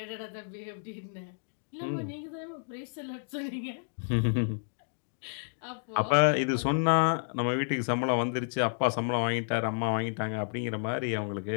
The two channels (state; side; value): silent; right; digital silence